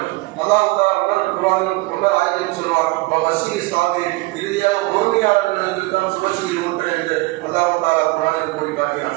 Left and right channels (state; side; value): quieter; left; 22.6 dB